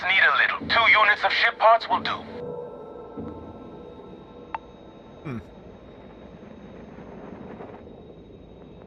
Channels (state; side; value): identical; both; correlation 1.00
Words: need a little. 2 units of ship parts will do.